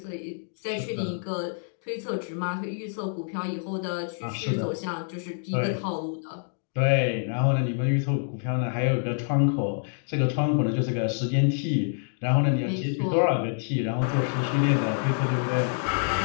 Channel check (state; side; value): silent; right; digital silence